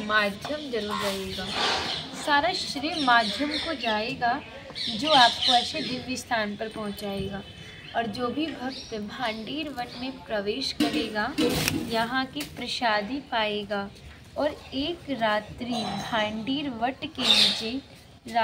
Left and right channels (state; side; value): identical; both; correlation 1.00